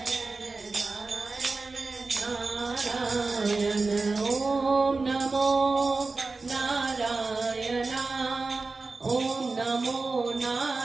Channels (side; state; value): left; quieter; 3.8 dB